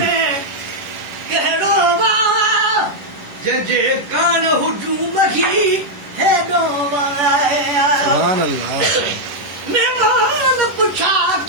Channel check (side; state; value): left; late; 11 ms